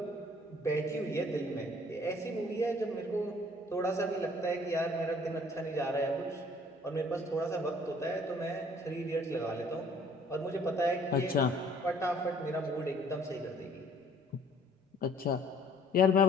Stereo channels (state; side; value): normal; both; correlation 0.57